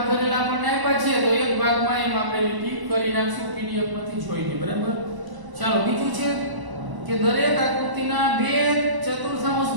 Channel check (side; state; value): left; late; 1.0 ms